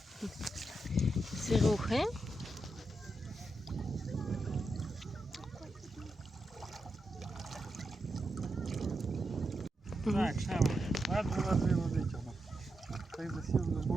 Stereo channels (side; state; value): both; normal; correlation 0.86